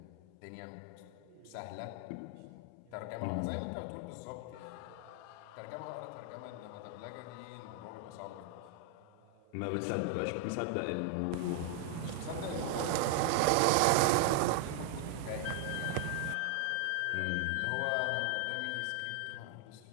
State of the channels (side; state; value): both; different; correlation 0.00